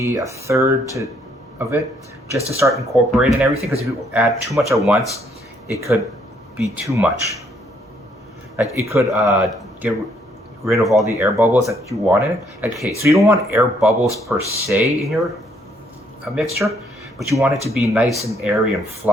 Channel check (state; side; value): normal; both; correlation 0.69